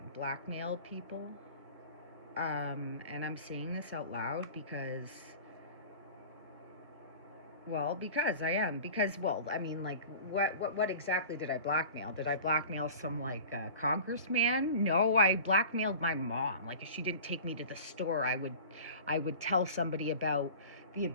blackmailed people. And I'm saying this out loud because I am. Because, well, I mean, like, what exactly did I blackmail? Did I blackmail some, like, congressman? No, I blackmailed my mom. Like, if she didn't take me to the store, I would tell somebody about the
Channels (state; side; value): inverted; both; correlation -0.40